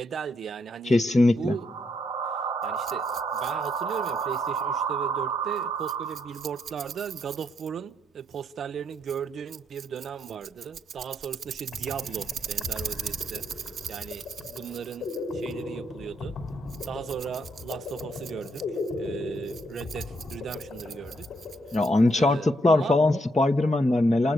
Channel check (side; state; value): both; normal; correlation 0.76